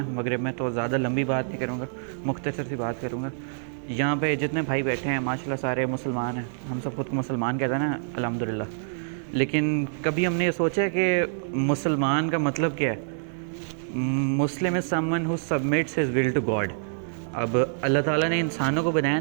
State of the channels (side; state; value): left; silent; 61 dB below the other